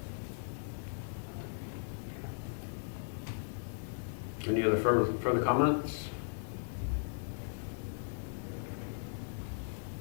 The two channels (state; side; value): silent; right; digital silence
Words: Any other further comments?